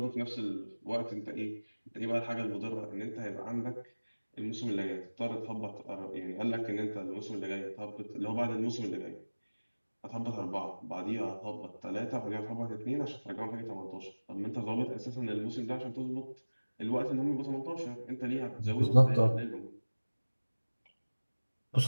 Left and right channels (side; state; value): both; inverted; correlation -1.00